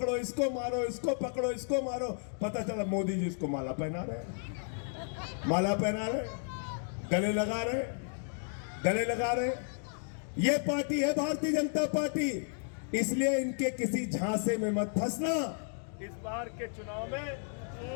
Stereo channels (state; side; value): silent; right; 56 dB below the other